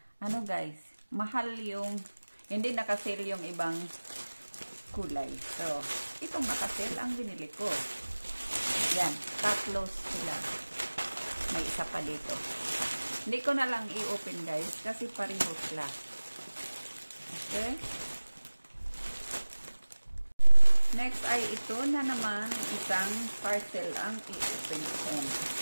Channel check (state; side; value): inverted; both; correlation -1.00